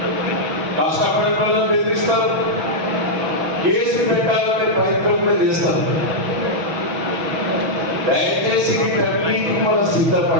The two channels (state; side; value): late; left; 6.1 ms